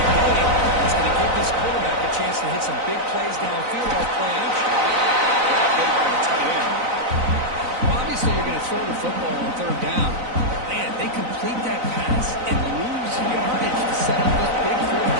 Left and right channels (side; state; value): left; late; 4.0 ms